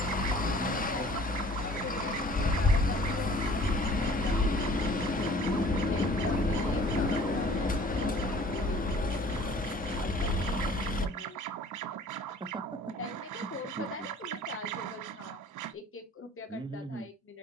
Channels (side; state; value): both; normal; correlation 0.51